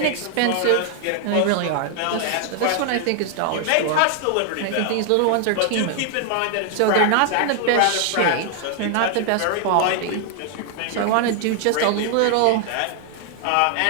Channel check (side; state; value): both; different; correlation 0.00